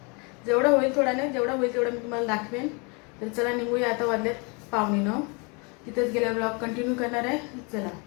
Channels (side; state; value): right; quieter; 31.9 dB